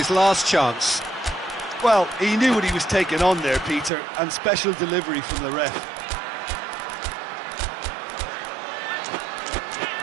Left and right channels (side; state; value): left; drops out; at 3.9 s